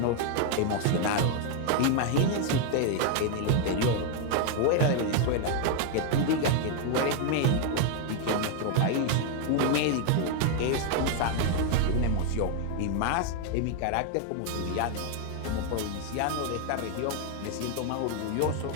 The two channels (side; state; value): both; different; correlation 0.00